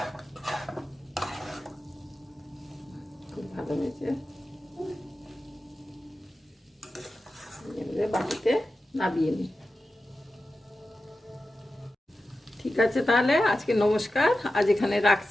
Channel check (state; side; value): normal; both; correlation 0.93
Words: খুব ভালো হয়েছে। এবারে বাটিতে নামিয়ে নিই। ঠিক আছে, তাহলে আজকে নমস্কার, আজ এখানে